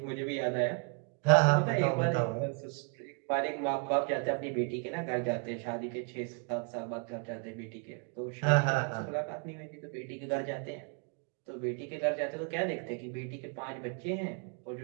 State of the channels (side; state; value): left; quieter; 34.1 dB